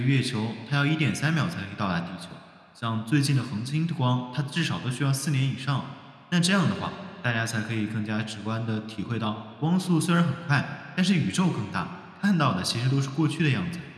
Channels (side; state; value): both; identical; correlation 1.00